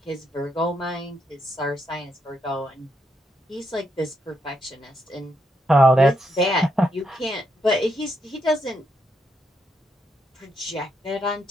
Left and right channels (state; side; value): normal; both; correlation 0.79